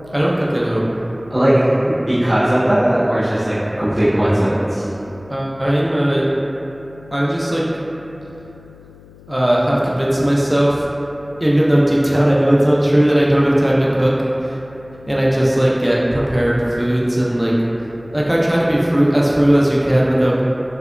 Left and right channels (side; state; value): left; noise; hum, 24 dB below the sound